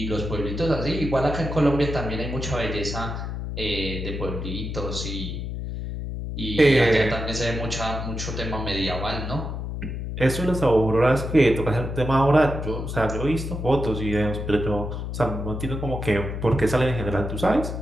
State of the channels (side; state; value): left; noise; hum, 5 dB below the sound